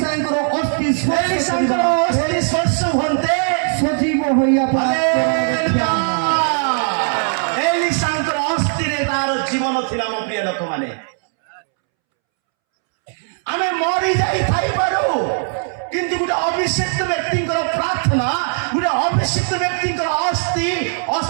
ଅସ୍ଥି ସ୍ପର୍ଶ ହୁଅନ୍ତେ, ସଜୀବ ହୋଇଆ ଏଲିସାଙ୍କର ଅସ୍ଥିରେ ତାର ଜୀବନ ଥିଲା। ମୋ ପ୍ରିୟ ଲୋକମାନେ, ଆମେ ମରି ଯାଇଥାଇପାରୁ, କିନ୍ତୁ ଗୋଟେ ଅଭିଷିକ୍ତ ବ୍ୟକ୍ତିଙ୍କର ପ୍ରାର୍ଥନା, ଗୋଟେ ଅଭିଷିକ୍ତ ବ୍ୟକ୍ତିଙ୍କର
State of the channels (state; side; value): silent; left; 67 dB below the other